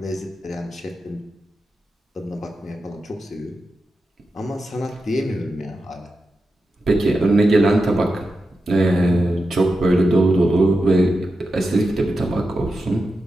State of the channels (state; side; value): normal; both; correlation 0.90